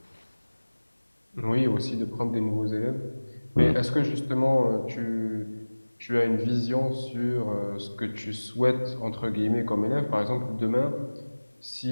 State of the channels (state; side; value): inverted; both; correlation -1.00